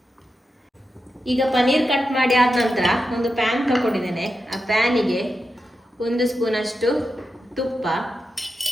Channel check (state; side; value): normal; both; correlation 0.89